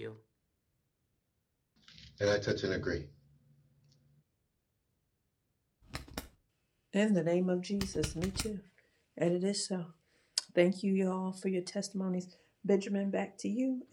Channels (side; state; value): both; identical; correlation 1.00